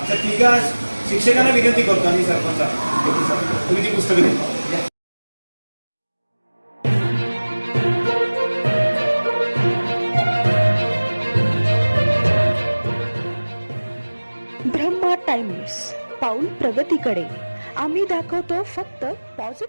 त्या 3 शिक्षकांना विनंती करतो आणि सरपंच तुम्ही ती पुस्तकं द्या. ब्रह्मा टाइम्स, पाऊल प्रगतीकडे. आम्ही दाखवतो फक्त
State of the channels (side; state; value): both; inverted; correlation -1.00